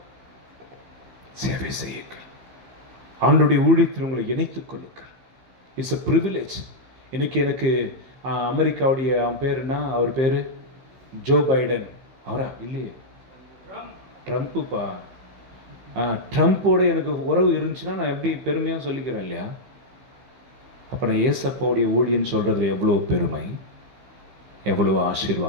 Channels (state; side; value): late; left; 15 ms